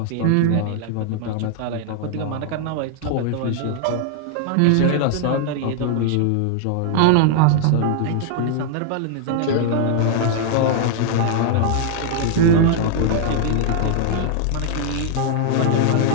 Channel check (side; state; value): both; different; correlation 0.00